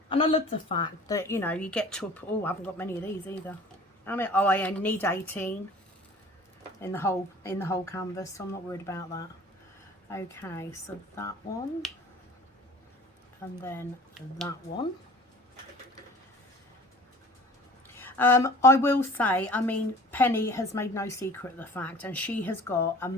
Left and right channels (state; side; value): normal; both; correlation 0.46